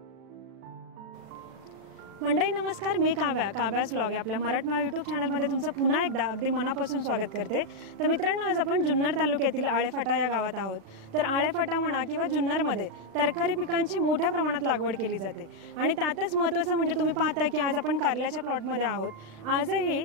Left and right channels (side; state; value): left; late; 36 ms